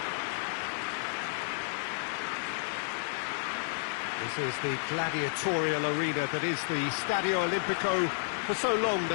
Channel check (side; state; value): right; silent; digital silence